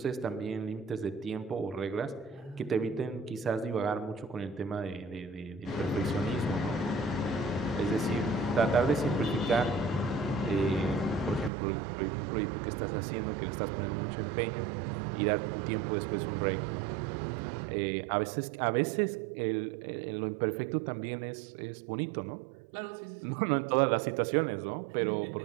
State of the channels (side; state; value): left; drops out; at 11.5 s